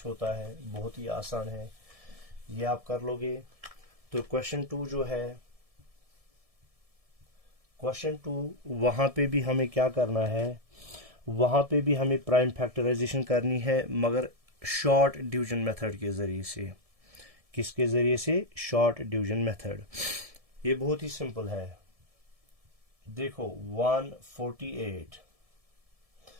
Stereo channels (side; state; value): left; late; 1.7 ms